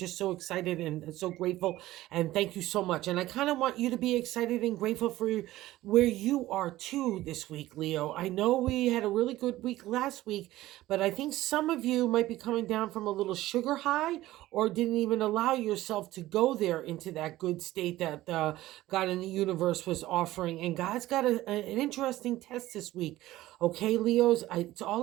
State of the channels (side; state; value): left; quieter; 16.1 dB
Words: so excited and so grateful. And thank you so much. And I kind of want you to be excited and grateful for where you are too this week, Leo. I know we had a really good week last week, but I think some of you might be coming down from a little sugar high or didn't even allow yourself to go there into that good state that God in the universe was offering. And God's got an interesting test this week. Okay, Leos, it's